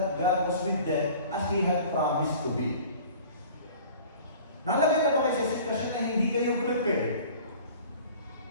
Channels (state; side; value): inverted; both; correlation -0.45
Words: God was with them as He had promised to be. Nalagay na ba kayo sa sitwasyon na hindi kayo prepared?